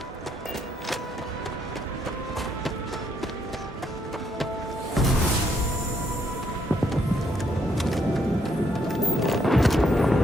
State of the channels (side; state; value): both; normal; correlation 0.73